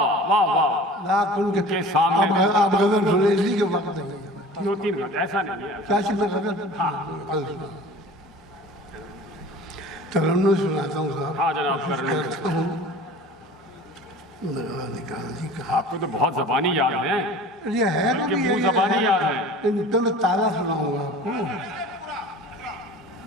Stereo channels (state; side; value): normal; both; correlation 0.42